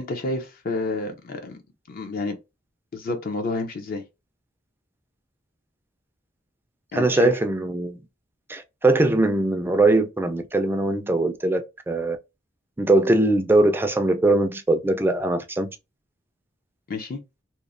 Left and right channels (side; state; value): both; normal; correlation 0.72